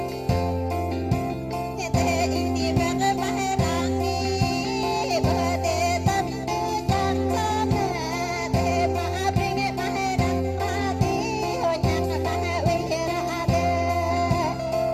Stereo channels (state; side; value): identical; both; correlation 1.00